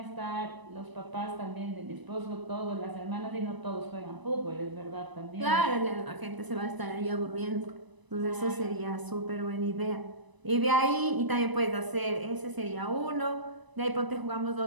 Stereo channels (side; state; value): left; late; 1.0 ms